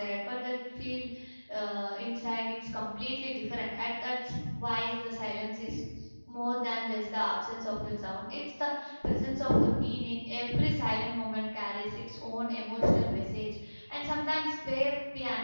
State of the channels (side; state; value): both; inverted; correlation -1.00